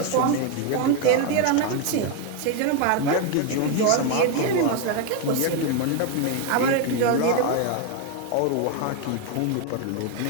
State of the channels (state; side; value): different; both; correlation 0.01